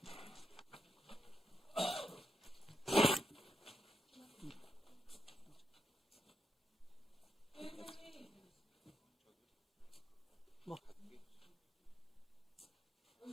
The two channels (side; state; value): both; normal; correlation 0.84